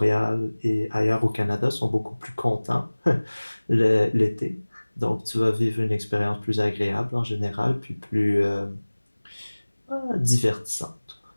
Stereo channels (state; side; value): inverted; both; correlation -1.00